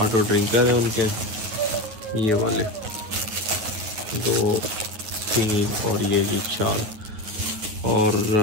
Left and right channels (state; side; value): late; left; 9.4 ms